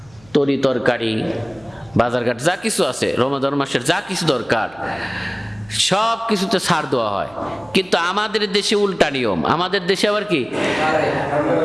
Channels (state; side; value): noise; right; hum, 27 dB below the sound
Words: তরি তরকারি, বাজারঘাট যা কিছু আছে, রমাদান মাসের যা কিছু দরকার সব কিছুতে ছাড় দেওয়া হয়। কিন্তু আমাদের দেশে উল্টা নিয়ম। আমাদের দেশে আবার কি,